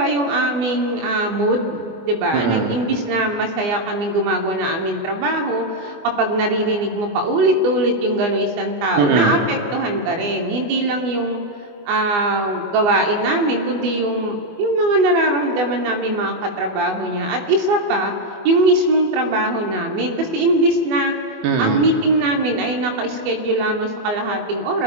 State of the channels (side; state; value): left; late; 24 ms